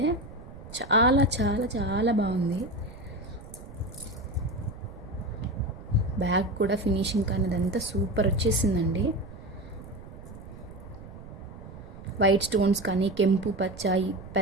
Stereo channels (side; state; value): right; noise; rumble, 15 dB below the sound